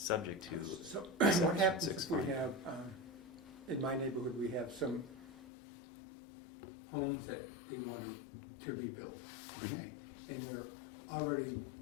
to. So Section what happens 6 if we finding. have, in my neighborhood, we have some homes that they want to rebuild, okay? And they're already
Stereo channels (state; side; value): drops out; right; at 5.5 s